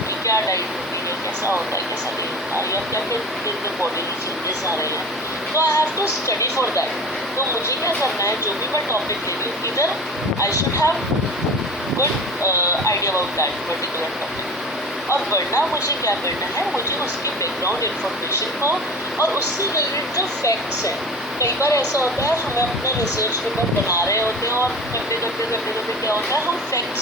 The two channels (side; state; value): both; normal; correlation 0.36